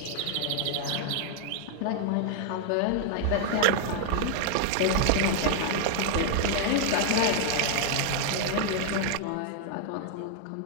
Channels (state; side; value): different; both; correlation -0.01